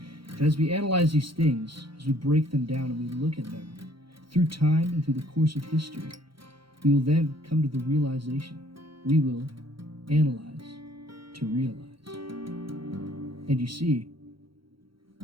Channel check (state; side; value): late; left; 0.74 ms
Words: And as we analyze these things, as we break them down and we look at them through time and through the course of history, we will then come to the realization we will analyze to realize. And you see,